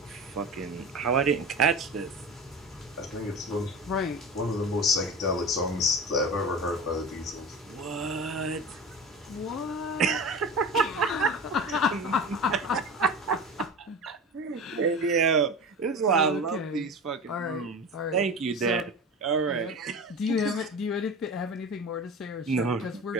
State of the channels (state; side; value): normal; both; correlation 0.31